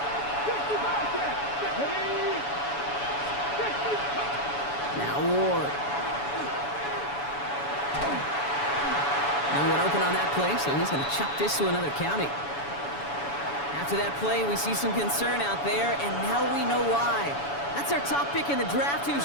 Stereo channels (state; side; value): late; right; 7.0 ms